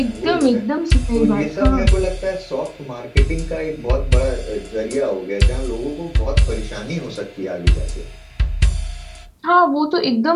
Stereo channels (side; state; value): both; identical; correlation 1.00